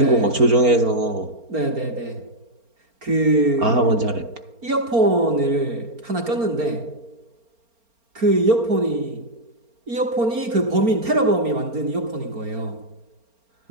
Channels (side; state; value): left; late; 4.4 ms